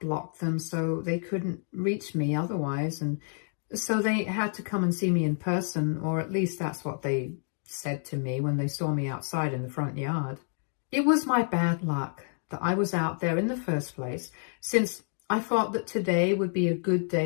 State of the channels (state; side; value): silent; right; 59 dB below the other